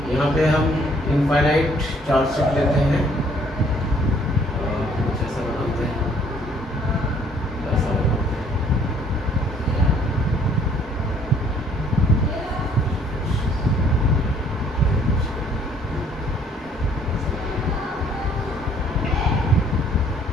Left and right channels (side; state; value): both; normal; correlation 0.61